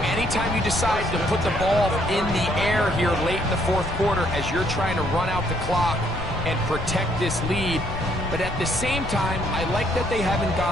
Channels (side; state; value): left; noise; rumble, 8 dB below the sound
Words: anytime you decide to put the ball in the air here late in the fourth quarter as you're trying to run out the clock and protect this lead. But at the same time, I like that they haven't